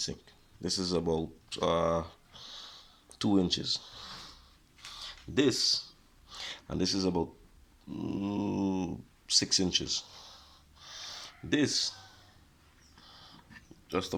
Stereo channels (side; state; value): both; identical; correlation 1.00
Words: This is about 2 inches. This is about 6 inches. This just